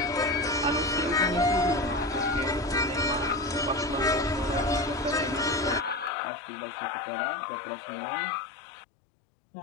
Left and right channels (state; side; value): drops out; right; at 6.1 s